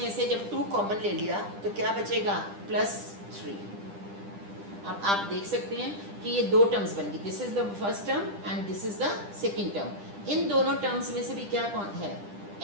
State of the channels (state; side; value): late; left; 10 ms